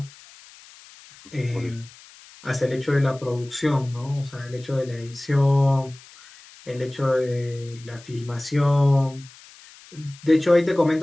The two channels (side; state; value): left; noise; hiss, 22 dB below the sound